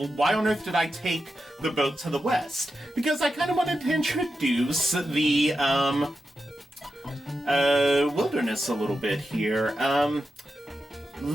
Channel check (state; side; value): normal; both; correlation 0.89